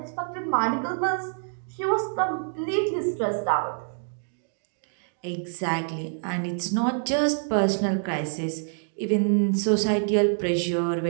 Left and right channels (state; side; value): silent; left; digital silence